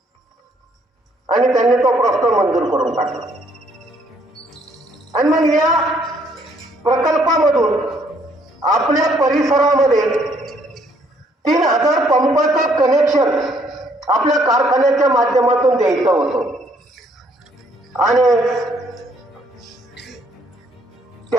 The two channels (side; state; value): both; normal; correlation 0.66